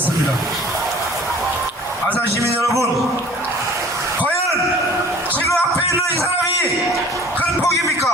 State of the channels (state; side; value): normal; both; correlation 0.49